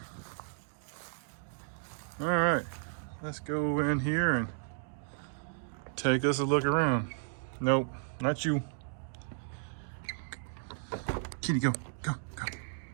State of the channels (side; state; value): left; silent; digital silence